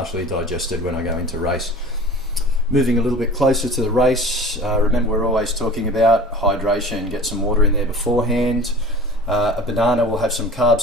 digested when I go into race. Moving a little bit closer to the race, remember we're always talking about hydration. Get some water in there beforehand. A banana will have some carbs,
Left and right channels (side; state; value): both; normal; correlation 0.41